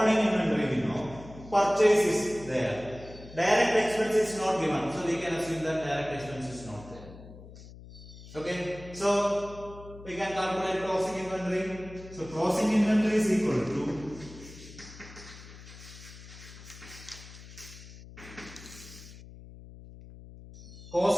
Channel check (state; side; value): noise; left; hum, 17 dB below the sound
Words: inventory we know, purchase is there. Direct expense is not given, so we can assume that direct expense is not there. Okay, so we can calculate closing inventory. So closing inventory is equal to